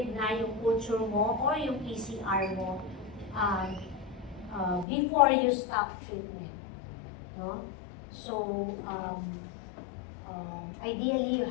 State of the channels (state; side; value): drops out; right; at 4.9 s